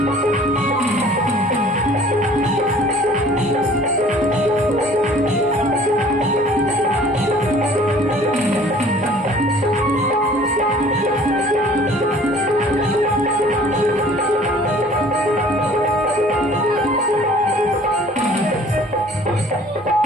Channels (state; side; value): normal; both; correlation 0.51